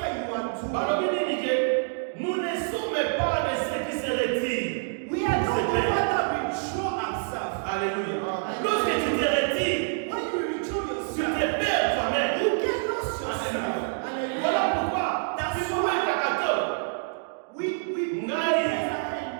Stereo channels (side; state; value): left; silent; digital silence